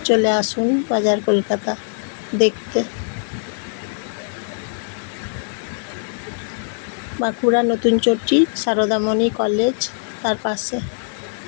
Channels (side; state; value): right; silent; 65 dB below the other